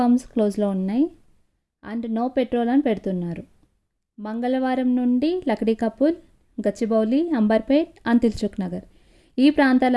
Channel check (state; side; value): identical; both; correlation 1.00